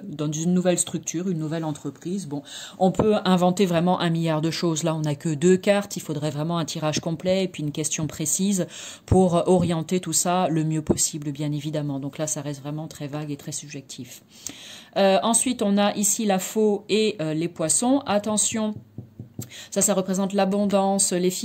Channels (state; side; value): identical; both; correlation 1.00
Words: nouvelle structure, une nouvelle entreprise. Bon, on peut inventer vraiment un milliard de choses, là on n'a que 2 cartes, il faudrait vraiment un tirage complet et puis une question précise pour orienter tout ça le mieux possible, bien évidemment. Donc là, ça reste vraiment très vague et très subjectif. Ensuite, on a ici la faux et les poissons. Attention, ça représente l'abondance, les